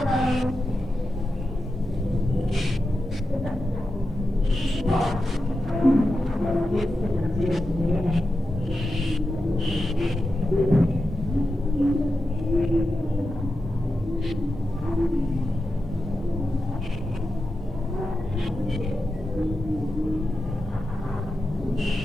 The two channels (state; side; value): normal; both; correlation 0.90